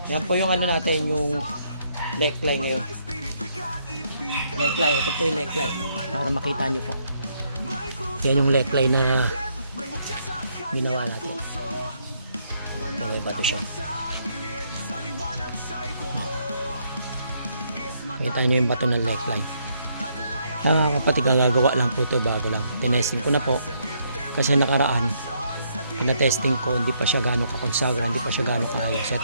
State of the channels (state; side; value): inverted; both; correlation -0.72